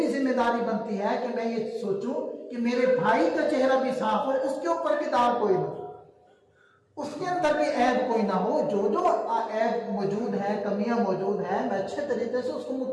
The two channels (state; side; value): identical; both; correlation 1.00